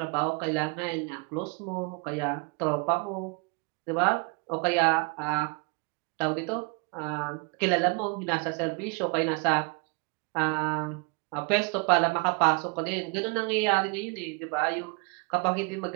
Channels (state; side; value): quieter; left; 32.3 dB